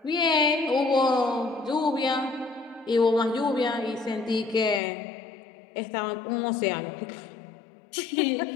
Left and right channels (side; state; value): right; drops out; at 4.8 s